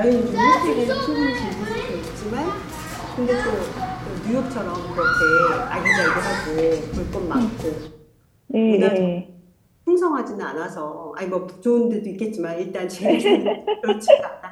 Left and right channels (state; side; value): identical; both; correlation 1.00